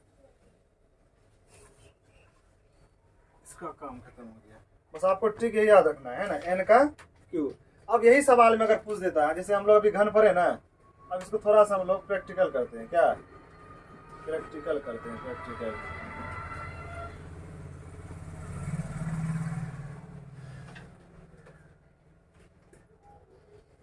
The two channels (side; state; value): both; identical; correlation 1.00